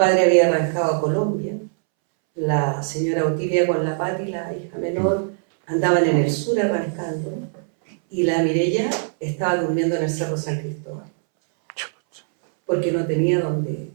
había arrancado a Colombia. La señora Otilia con la Pati, la hija menor, andaban en el sur arrancando. Y la Mireia estaba durmiendo en el Cerro San Cristóbal. Porque no tenía donde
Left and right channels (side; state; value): left; silent; 65 dB below the other